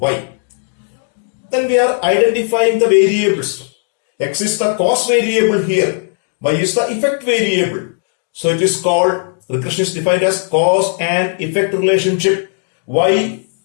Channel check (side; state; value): right; silent; digital silence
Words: y. Then we are identifying the variables. X is the cause variable here, y is the effect variable. So it is called, regression is defined as cause and effect relationship. Y